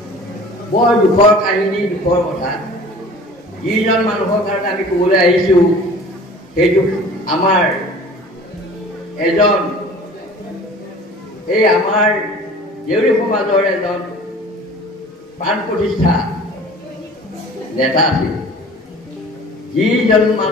বৰ দুখৰ কাহিনী দুখৰ কথা যিজন মানুহৰ কাৰণে আমি ক'বলৈ আহিছোঁ সেইটো আমাৰ এজন এই আমাৰ দেউৰী সমাজৰ এজন প্ৰাণ প্ৰতিষ্ঠা নেতা আছিল যিজন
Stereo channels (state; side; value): normal; both; correlation 0.45